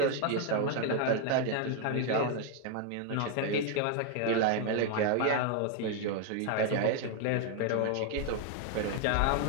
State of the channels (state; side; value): different; both; correlation 0.00